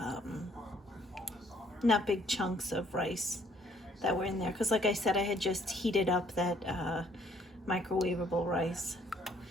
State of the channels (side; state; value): both; normal; correlation 0.64